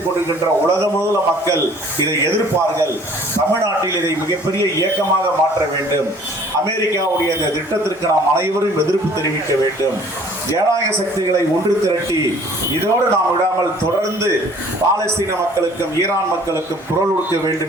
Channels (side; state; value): both; normal; correlation 0.53